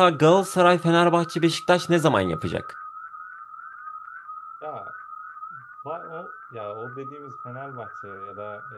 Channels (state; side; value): identical; both; correlation 1.00